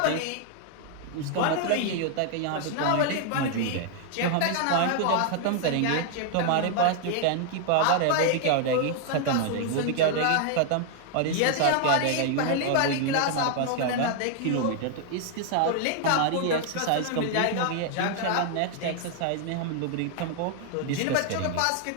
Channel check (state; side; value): different; both; correlation 0.00